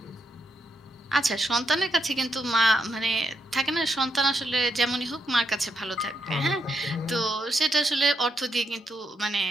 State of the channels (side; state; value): both; normal; correlation 0.80